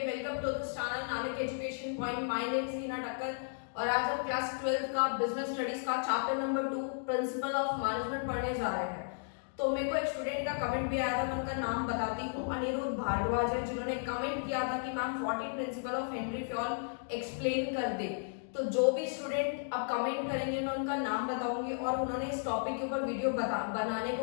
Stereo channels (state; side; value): silent; right; digital silence